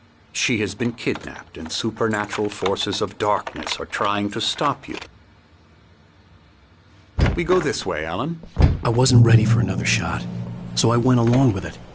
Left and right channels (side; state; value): both; identical; correlation 1.00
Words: She has been kidnapped and supernatural forces of darkness are trying to stop you. We go this way, Alan. I wasn't ready for another shot, so I went along with it.